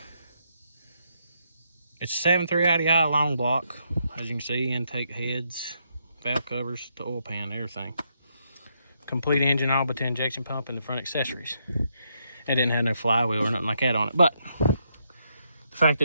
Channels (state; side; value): inverted; both; correlation -0.78